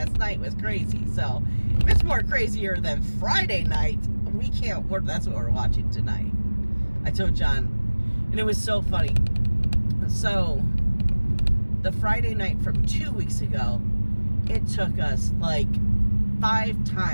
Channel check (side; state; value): both; inverted; correlation -1.00